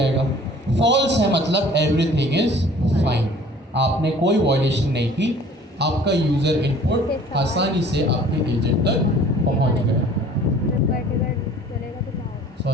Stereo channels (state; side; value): normal; both; correlation 0.50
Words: फॉल्स है मतलब एवरीथिंग इज फाइन, आपने कोई वॉयलेशन नहीं की, आपका यूज़र इनपुट आसानी से आपके एजेंट तक पहुंच गया।